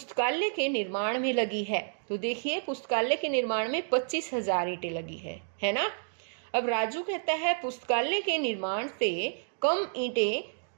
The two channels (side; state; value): left; silent; digital silence